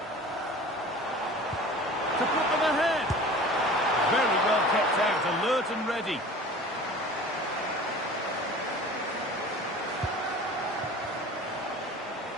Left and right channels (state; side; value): normal; both; correlation 0.41